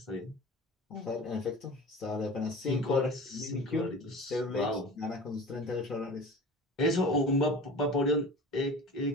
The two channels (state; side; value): normal; both; correlation 0.37